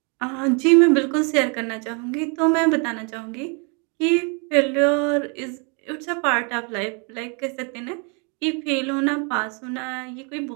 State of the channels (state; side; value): quieter; left; 35.2 dB